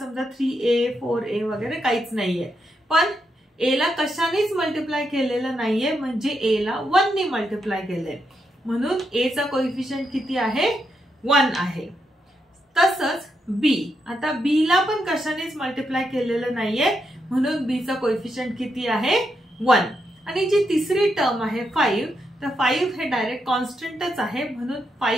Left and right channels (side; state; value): both; normal; correlation 0.82